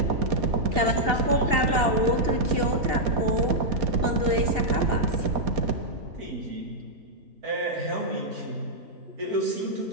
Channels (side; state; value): left; late; 2.8 ms